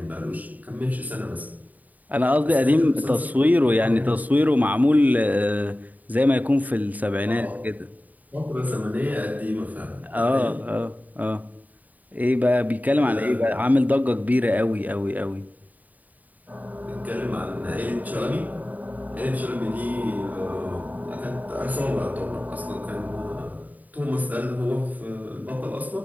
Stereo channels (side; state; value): left; late; 0.077 ms